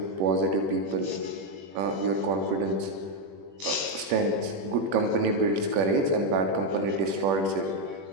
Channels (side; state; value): left; late; 21 ms